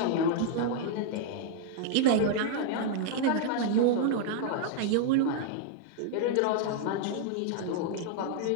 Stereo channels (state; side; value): different; both; correlation -0.01